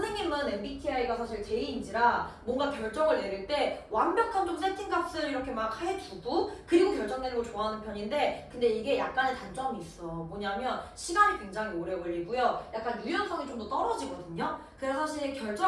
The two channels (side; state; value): both; identical; correlation 1.00